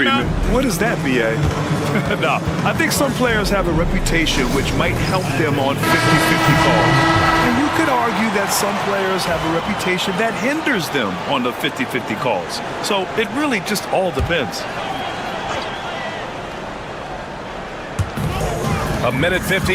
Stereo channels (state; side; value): identical; both; correlation 1.00